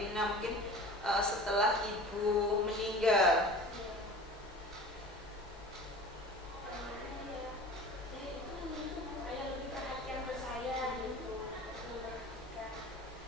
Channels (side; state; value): both; normal; correlation 0.39